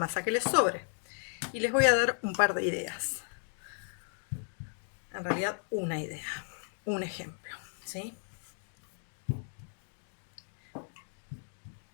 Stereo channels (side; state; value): right; silent; 55 dB below the other